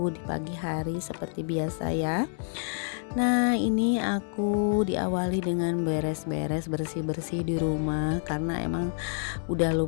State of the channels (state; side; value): silent; right; 59 dB below the other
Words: di pagi hari seperti biasa ya. Nah, ini aku diawali dengan beres-beres, bersih-bersih di rumah karena emang udah